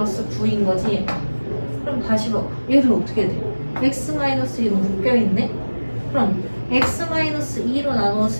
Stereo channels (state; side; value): inverted; both; correlation -1.00